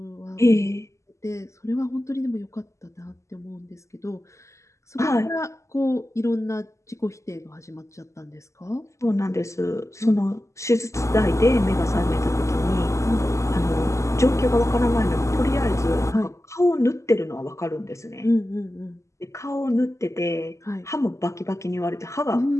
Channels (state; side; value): late; right; 0.14 ms